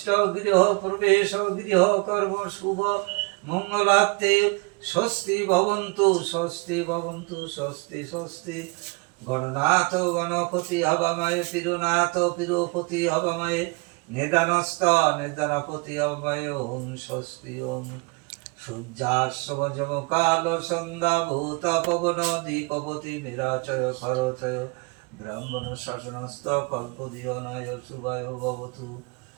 গৃহ প্রবেশ গৃহ কর্ম শুভ মঙ্গলার্থে স্বস্তি ভবন্তু স্বস্তি ভবন্তু স্বস্তি স্বস্তি। গণনাথ গণপতি হবাময়ে তিরুনাথ তিরুপতি হবাময়ে নিদানস্থ নিদানপতি হবাময়ে ওম স্বস্তি ওম। সূর্যাশ্বজমকাল সন্ধ্যা ভূত পবন দিকপতি নিরাচয় সরচয় ব্রাহ্মণ শাসনস্থ কল্পদীয় নয় শুভায় ভবতু।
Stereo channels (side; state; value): left; quieter; 29.9 dB